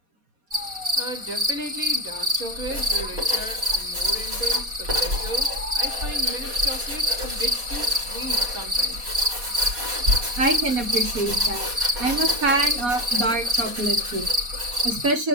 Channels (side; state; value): left; late; 4.2 ms